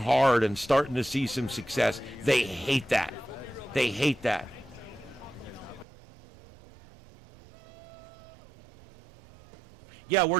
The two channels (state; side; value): drops out; left; at 5.9 s